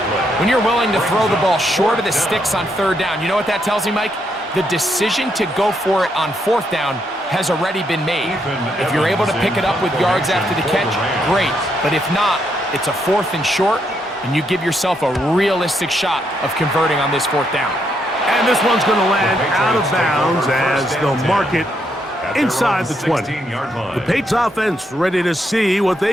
When you're willing to throw the ball short of the sticks on 3rd down, you know what that tells me, Mike? The decision to go for it on 4th down has already been made. If you're able to pick it up with yards after the catch, great. But if not, it's a 4th and short, and you give yourself a realistic shot of converting on this 4th down. And this one's going to land out of bounds as they'll mark it inside the 20. The Patriots offense ready to see what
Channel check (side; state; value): both; normal; correlation 0.77